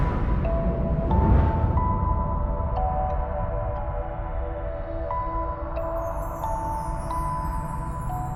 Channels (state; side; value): identical; both; correlation 1.00